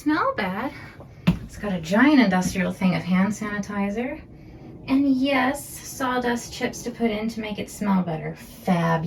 bad. It's got a giant industrial thing of hand sanitizer. And yes, sawdust chips to put in to make it smell better.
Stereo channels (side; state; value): both; identical; correlation 1.00